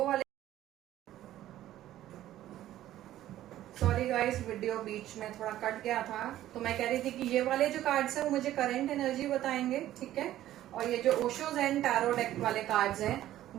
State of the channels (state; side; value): quieter; left; 13.4 dB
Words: वाले, सॉरी गाइस वीडियो बीच में थोड़ा कट गया था, तो मैं कह रही थी कि ये वाले जो कार्ड्स हैं वो मुझे करंट एनर्जी बताएंगे। ठीक है, और ये जो ओशो ज़ेन टैरो डेक वाले कार्ड्स हैं